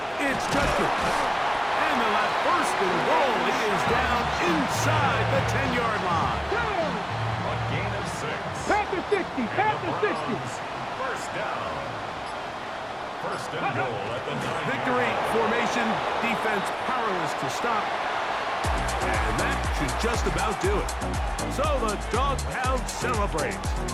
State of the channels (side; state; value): both; identical; correlation 1.00